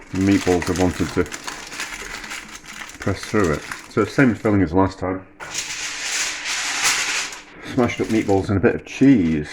meatballs have wanted to press through it. So same filling as last time. Smashed up meatballs and a bit of cheese.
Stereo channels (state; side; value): identical; both; correlation 1.00